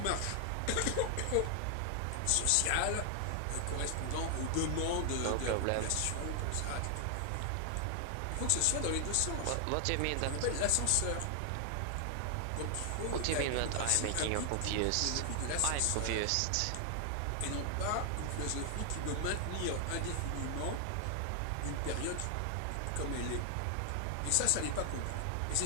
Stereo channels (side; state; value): both; different; correlation 0.00